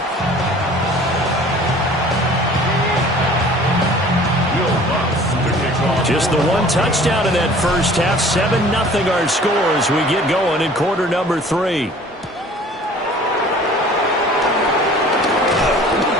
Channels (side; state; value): both; normal; correlation 0.48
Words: Just the 1 touchdown in that first half. 7-0 our score as we get going in quarter number 3.